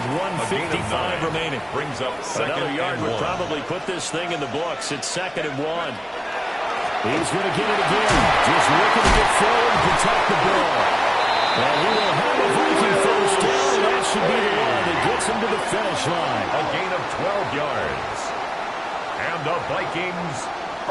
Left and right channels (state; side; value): identical; both; correlation 1.00